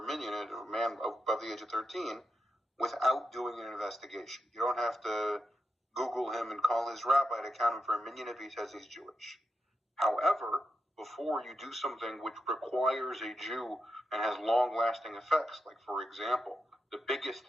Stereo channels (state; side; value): normal; both; correlation 0.86